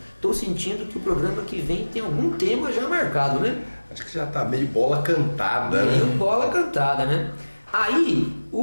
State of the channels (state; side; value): inverted; both; correlation -1.00